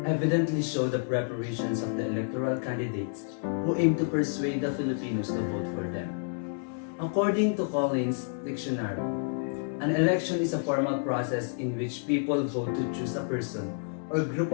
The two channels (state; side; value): silent; right; digital silence